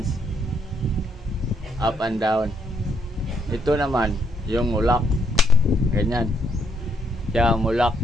up and down. Ito naman yung mulak, ganyan siya mulak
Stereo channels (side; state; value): both; normal; correlation 0.72